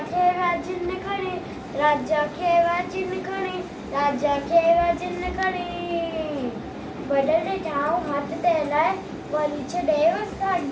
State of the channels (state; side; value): identical; both; correlation 1.00